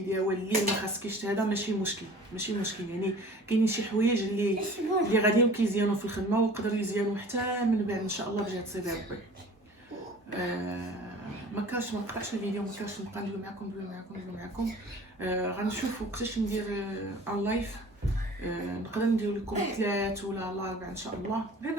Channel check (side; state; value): both; normal; correlation 0.45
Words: واللي ما خاصكيش هذا ماشي مشكل يعني كاينين شي حوايج اللي غاديين كيزيانوا في الخدمه ويقدروا يزيانوا حتى من بعد ان شاء الله بجهه سيدي ربي. ما نقطعش الفيديو، ما كانش نبقى ندوي معكم. غنشوف وقتاش ندير ان لايف، نقدر ندير لكم 3 ولا 4 ان شاء الله، غير